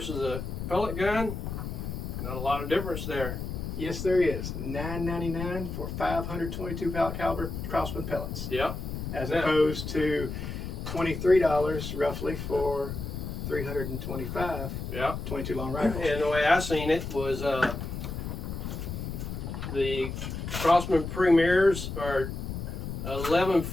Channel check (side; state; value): left; noise; rumble, 6 dB below the sound